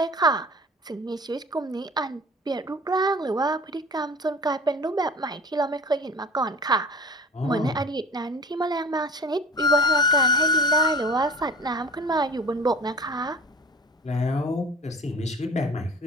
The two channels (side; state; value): both; normal; correlation 0.41